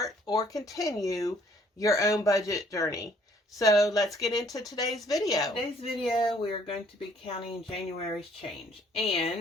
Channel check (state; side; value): normal; both; correlation 0.62